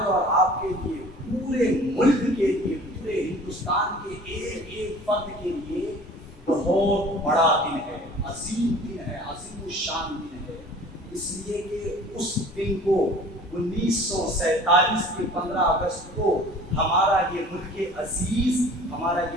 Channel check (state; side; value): normal; both; correlation 0.46